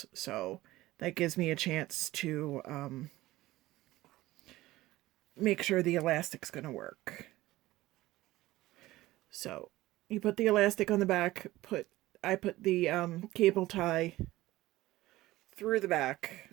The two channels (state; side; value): quieter; left; 17.2 dB